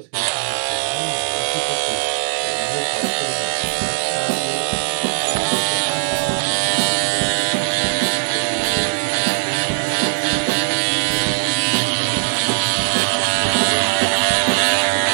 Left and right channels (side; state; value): left; silent; digital silence